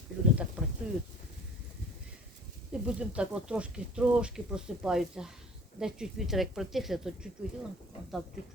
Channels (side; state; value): both; normal; correlation 0.49